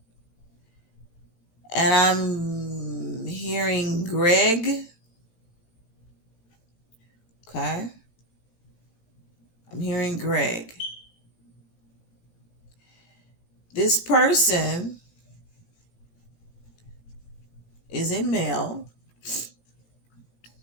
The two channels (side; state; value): right; late; 18 ms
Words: And I'm hearing Greg. Okay. I'm hearing Greg. This person is a male.